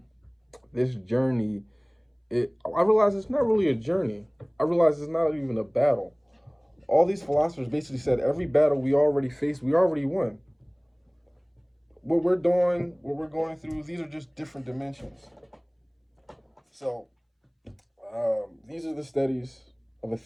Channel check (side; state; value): both; identical; correlation 1.00